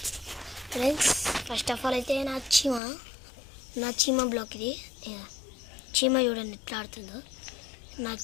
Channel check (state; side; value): drops out; right; at 2.8 s